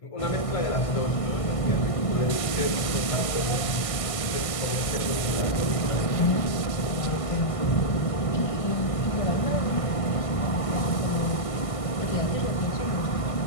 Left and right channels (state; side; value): late; right; 1.5 ms